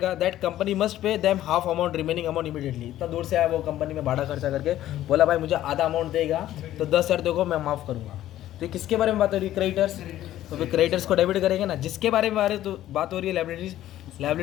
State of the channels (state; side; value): quieter; right; 13.3 dB